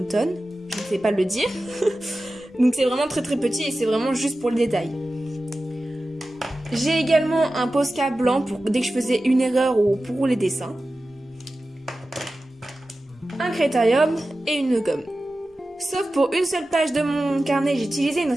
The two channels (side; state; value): both; normal; correlation 0.94